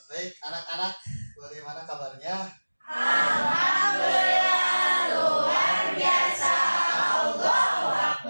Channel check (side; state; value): both; inverted; correlation -1.00